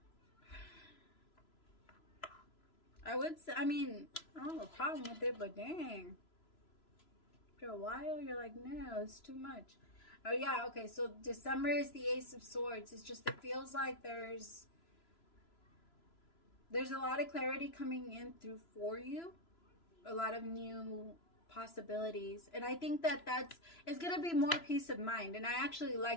I would say, I mean, I don't have a problem with it, but dang. After a while, you're like, no, it's too much. Oh, yeah, okay, so December is the Ace of Swords. It's just, it feels like there's a lot of clarity coming in through for you. A lot of new possibilities. And I think that it's going to be more peace of mind. And I actually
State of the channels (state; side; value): late; right; 3.0 ms